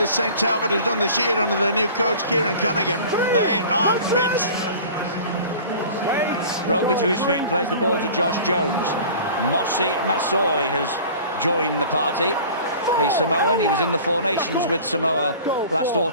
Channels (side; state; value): both; inverted; correlation -0.43